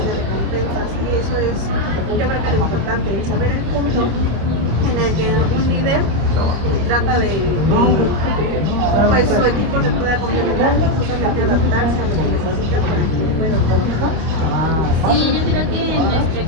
de recompensas. Y eso es, yo creo que lo importante, el saber el punto en el que un líder trata de pues su equipo se pueda complementar y justamente adaptarse a lo que necesita para que pueda trabajar. Sí, yo creo que en nuestro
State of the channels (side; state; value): left; late; 25 ms